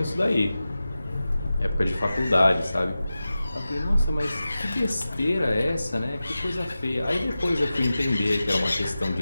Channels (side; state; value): both; inverted; correlation -0.94